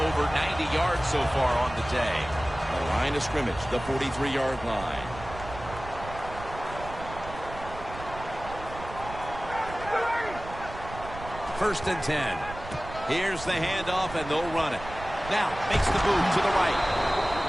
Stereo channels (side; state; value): right; noise; rumble, 13 dB below the sound